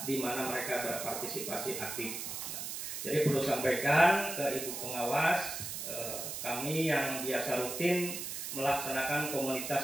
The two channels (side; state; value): right; noise; hiss, 5 dB below the sound